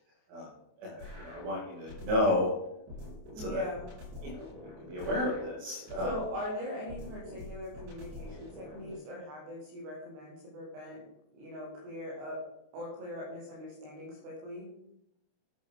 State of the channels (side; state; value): left; late; 28 ms